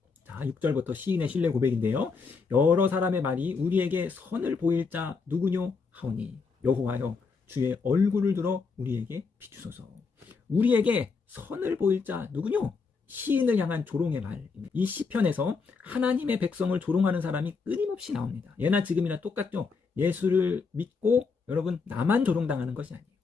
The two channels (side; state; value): right; quieter; 4.8 dB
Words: 자, 6절부터 시인의 신뢰 고백인데요. 여러 사람의 말이 우리에게 선을 보일 자 누구뇨 하오니 여호와여 주의 얼굴을 들어 우리에게 비추소서. 우리에게 선을 보일 자 누구뇨? 시인을 향한 조롱의 말입니다. 이 시편에서 하나님의 백성을 조롱하는 사람이 끊임없이 나옵니다. 예나 지금이나 똑같죠. 예수를 믿고 여러분 나만 조롱당하는 것이 아니에요.